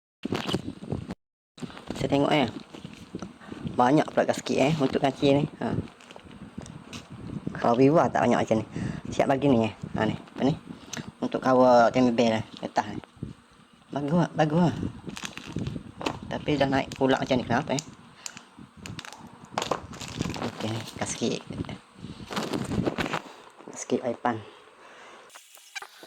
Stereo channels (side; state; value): both; identical; correlation 1.00